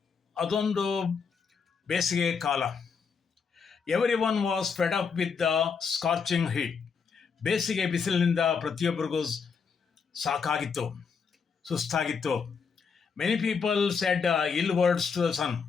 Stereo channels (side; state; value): right; quieter; 5.8 dB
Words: ಅದೊಂದು ಬೇಸಿಗೆ ಕಾಲ. Every one was fed up with the scorching heat. ಬೇಸಿಗೆ ಬಿಸಿಲಿನಿಂದ ಪ್ರತಿಯೊಬ್ಬರಿಗೂ ಸಾಕಾಗಿತ್ತು, ಸುಸ್ತಾಗಿತ್ತು. Many people said ill words to the sun.